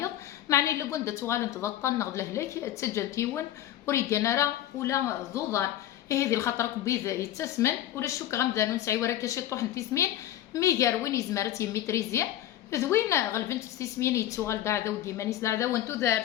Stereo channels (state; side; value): quieter; right; 12.8 dB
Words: معني الا كنت تغال تضطن نغد لهلاك تسجل تيون وريكان راه ولا ضوضان هذه الخطر كبيذ يتسمن ولا الشوك غمدانو نسعي ورا كاشي طوح تسمين ميغار وين يزمرت يميتريزيا ذوين غلبنت تسمين يتسوغال داعدا وديمانيس داعدا وانتو